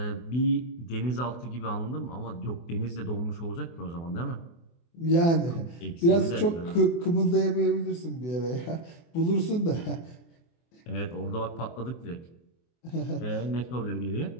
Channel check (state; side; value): late; right; 24 ms